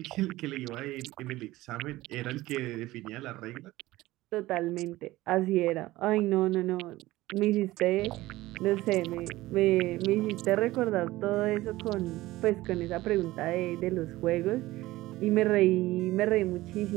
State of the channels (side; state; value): left; quieter; 17.7 dB